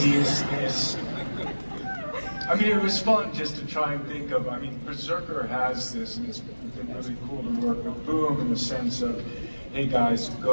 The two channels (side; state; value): both; inverted; correlation -1.00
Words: I mean, it was fun just to try and think of, I mean, Berserker has this, and it's been really cool to work with Boom in the sense of, hey guys,